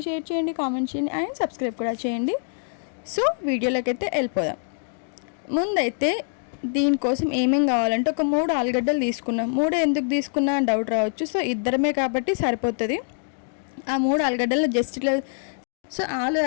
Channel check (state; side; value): silent; right; digital silence